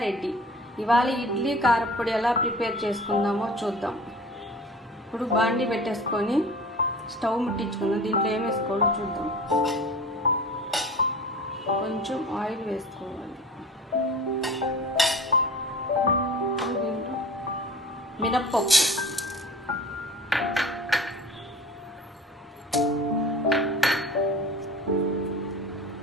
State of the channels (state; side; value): normal; both; correlation 0.40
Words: ఇవాళ ఇడ్లీ కారప్పొడి ఎలా ప్రిపేర్ చేసుకుందామో చూద్దాం. ఇప్పుడు బాండి పెట్టేసుకొని స్టవ్ ముట్టించుకుందాం. దీంట్లో ఏం వేసుకోవాలో చూద్దాం. కొంచెం ఆయిల్ వేసుకోవాలి. దీంట్లో మినప్పప్పు,